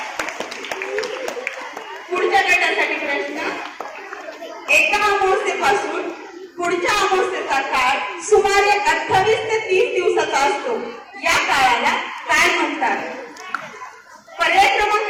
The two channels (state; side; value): identical; both; correlation 1.00